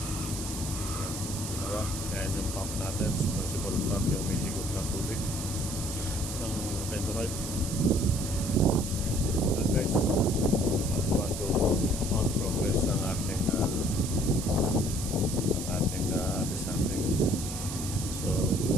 diba? Ayan yung pump natin, submersible pump, yung may higop na tubig ng dendrite. Guys, want to on progress ang ating something. So,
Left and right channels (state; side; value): noise; right; hiss, 7 dB below the sound